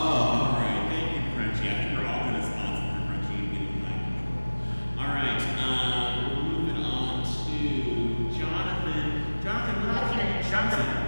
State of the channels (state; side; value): inverted; both; correlation -1.00